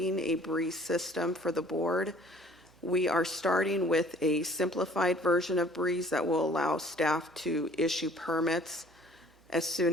a Brees system for the board. We are starting with a simplified version of Brees that will allow staff to issue permits as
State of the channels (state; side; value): normal; both; correlation 0.54